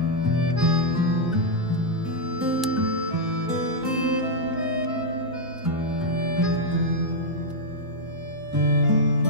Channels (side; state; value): both; normal; correlation -0.04